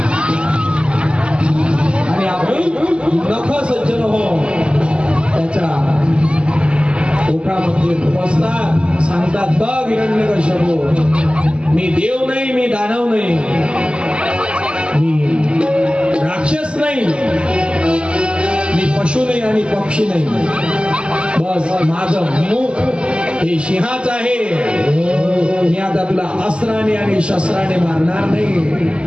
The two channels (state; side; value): late; left; 0.054 ms